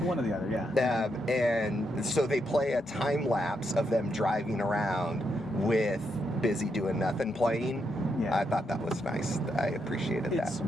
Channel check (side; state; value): both; normal; correlation 0.81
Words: one or the other, yeah. And so they play a time lapse of them driving around with "Busy Doing Nothing" playing. Yeah. I thought that was nice. I appreciated that.